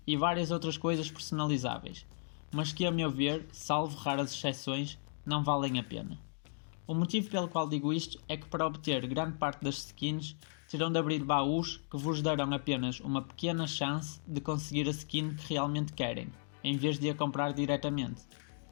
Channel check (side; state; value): right; silent; digital silence